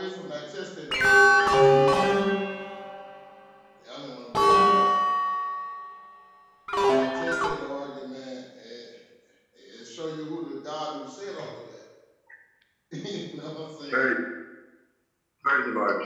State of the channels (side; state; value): both; identical; correlation 1.00